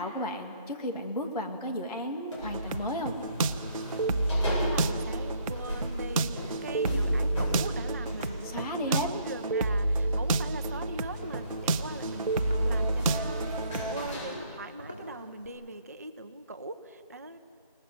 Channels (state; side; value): inverted; both; correlation -0.64